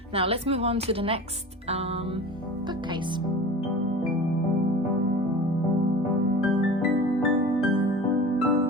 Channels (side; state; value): both; normal; correlation 0.36